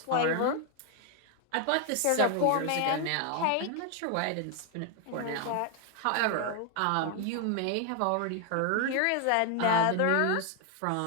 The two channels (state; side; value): different; both; correlation 0.00